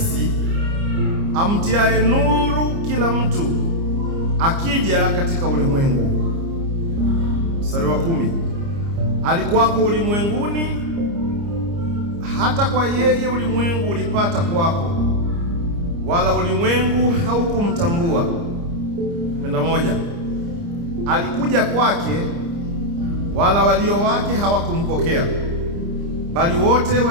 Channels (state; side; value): late; left; 29 ms